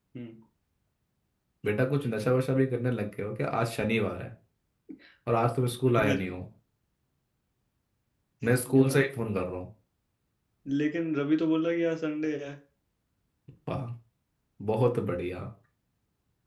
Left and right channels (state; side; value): identical; both; correlation 1.00